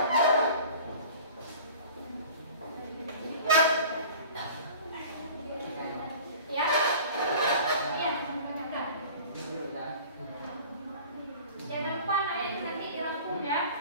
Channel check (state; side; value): inverted; both; correlation -0.43